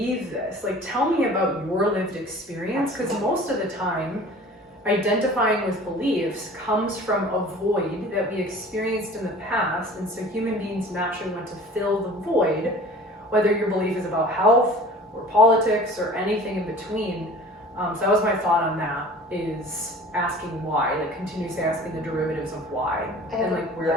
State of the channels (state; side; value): normal; both; correlation 0.44